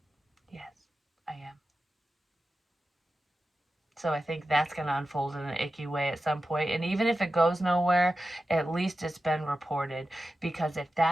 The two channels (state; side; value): normal; both; correlation 0.93